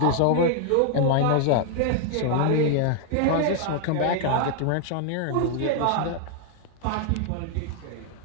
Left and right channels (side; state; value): both; different; correlation 0.00